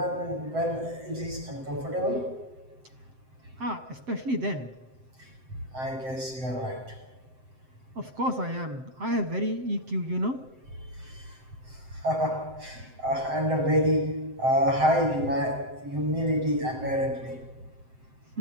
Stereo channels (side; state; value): left; late; 7.7 ms